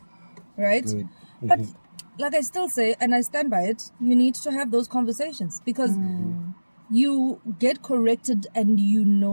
right? Good. But like I still say, and I stand by it, you need to have those conversations because you get corrected and you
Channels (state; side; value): inverted; both; correlation -1.00